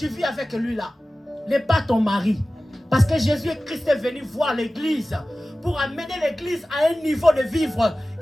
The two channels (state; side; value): normal; both; correlation 0.96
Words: vis avec lui là, n'est pas ton mari. Parce que Jésus-Christ est venu voir l'église pour amener l'église à un niveau de vivre